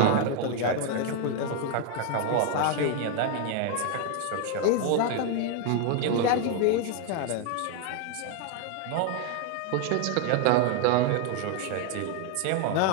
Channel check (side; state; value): both; different; correlation 0.00